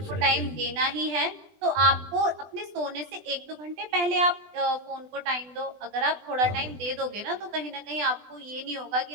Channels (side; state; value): left; late; 20 ms